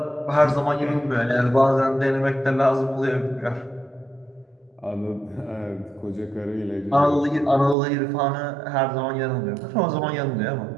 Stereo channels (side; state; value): left; drops out; at 7.8 s